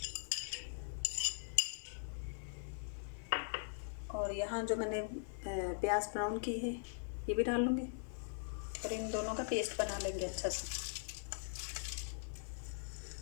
और यहाँ जो मैंने प्याज ब्राउन की है ये भी डाल लूँगी और इन दोनों का पेस्ट बना लेंगे अच्छा से।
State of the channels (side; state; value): right; silent; 50 dB below the other